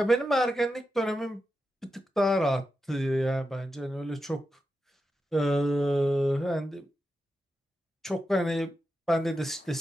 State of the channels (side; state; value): both; normal; correlation 0.89